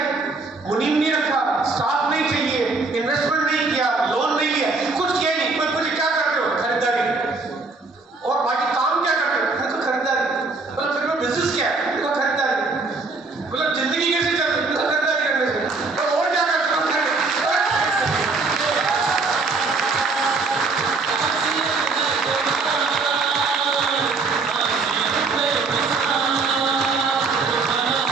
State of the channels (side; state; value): left; quieter; 3.8 dB